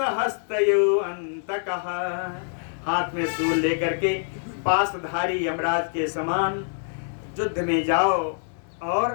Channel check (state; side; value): silent; right; digital silence